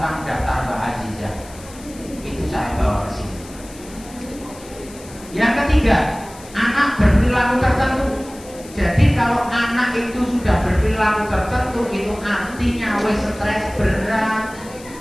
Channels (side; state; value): left; noise; hiss, 19 dB below the sound